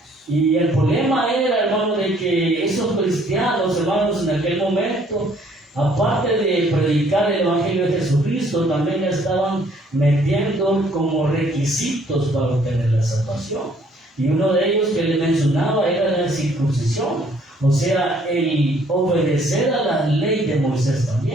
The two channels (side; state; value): both; normal; correlation 0.62